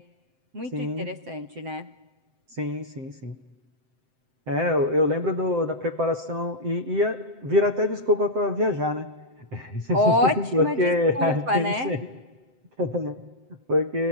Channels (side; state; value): left; late; 7.8 ms